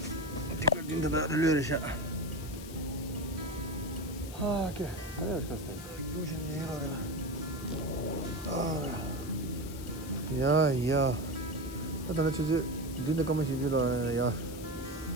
the relation. Okay, yeah. I don't know. Didn't come and yeah.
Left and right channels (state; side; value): noise; left; hiss, 15 dB below the sound